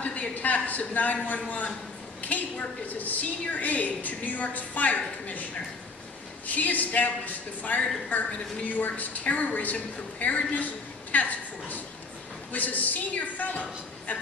the attacks of 9/11, Kate worked as a senior aide to New York's fire commissioner. She established the Fire Department of New York's Terrorism Preparedness Task Force, was a senior fellow at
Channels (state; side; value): quieter; right; 3.9 dB